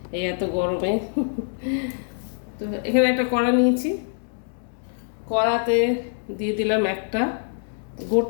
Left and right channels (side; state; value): right; silent; digital silence